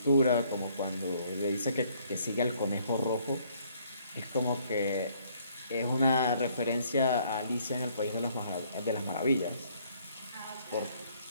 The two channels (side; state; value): both; inverted; correlation -0.65